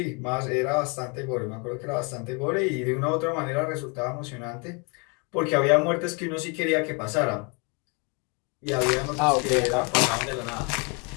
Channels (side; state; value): right; quieter; 32.5 dB